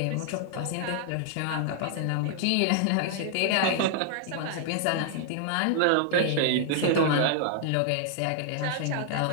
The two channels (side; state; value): both; different; correlation -0.01